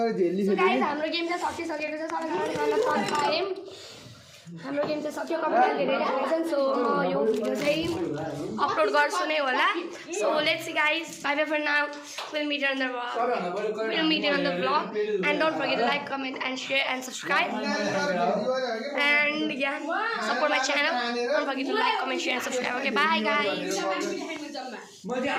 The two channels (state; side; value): identical; both; correlation 1.00